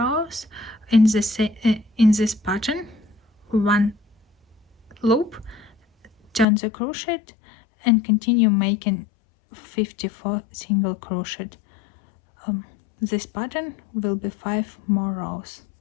in this pattern, 1 loop, turn the crochet and continue making 54 single crochet. This pattern will be 5 more rows,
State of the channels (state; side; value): drops out; right; at 6.5 s